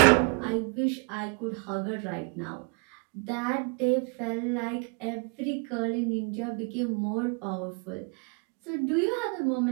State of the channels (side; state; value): left; quieter; 37.8 dB